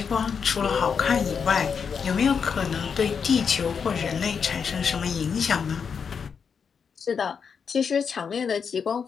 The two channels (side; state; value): right; quieter; 6.4 dB